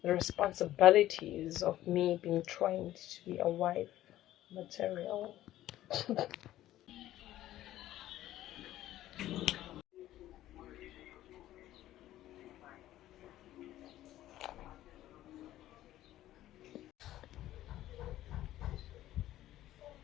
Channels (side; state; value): right; quieter; 14.0 dB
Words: The responsibilities of me being trained to be a wife material.